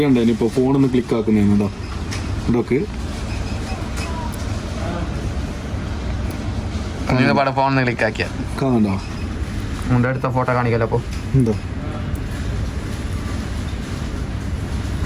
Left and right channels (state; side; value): identical; both; correlation 1.00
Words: ഇനിയിപ്പോൾ ഫോണൊന്ന് ക്ലിക്ക് ആക്കുന്നതാണ്. ഇതോ ഇതൊക്കെ ഫോൺ ക്ലിക്ക് ആക്കിയ കാണണ്ടോ? അടുത്ത ഫോട്ടോ കാണിക്കല്ലോ. അപ്പോൾ എന്തോ